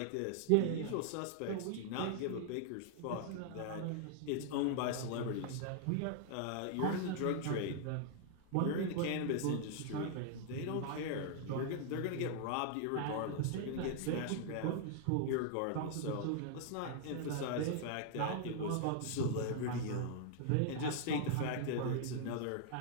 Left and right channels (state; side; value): different; both; correlation -0.01